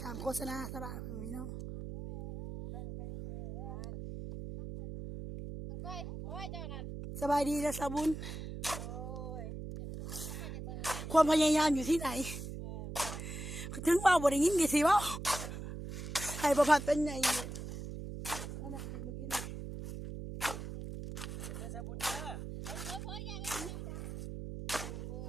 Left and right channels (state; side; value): noise; right; hum, 7 dB below the sound